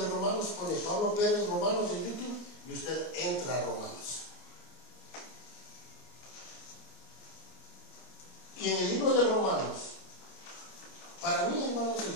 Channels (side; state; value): right; late; 26 ms